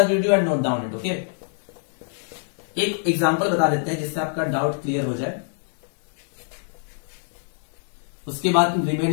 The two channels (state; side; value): silent; right; digital silence